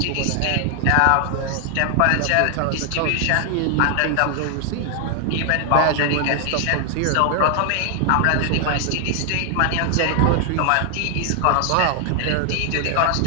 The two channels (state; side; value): different; both; correlation 0.00